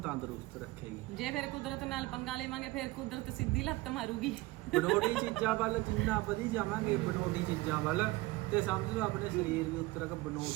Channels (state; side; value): quieter; left; 20.3 dB